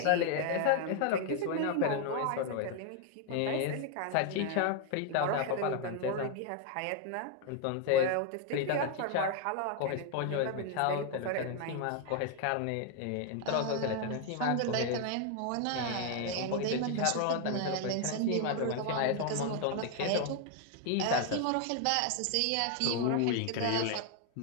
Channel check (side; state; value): both; different; correlation 0.01